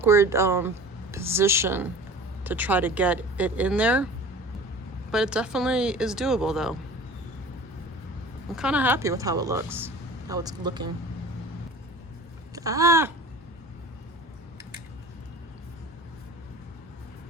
position to try to get it in there. But it definitely is doable though. I'm kind of happy with how it looks, how it's looking. Ah!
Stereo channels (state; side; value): normal; both; correlation 0.41